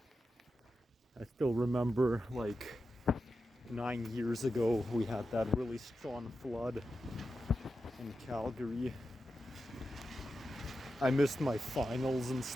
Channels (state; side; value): normal; both; correlation 0.90